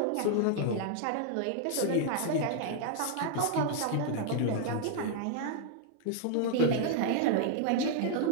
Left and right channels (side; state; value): both; different; correlation 0.00